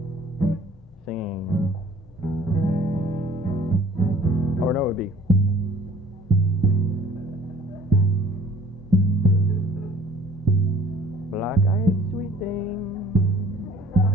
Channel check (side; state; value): both; normal; correlation 0.52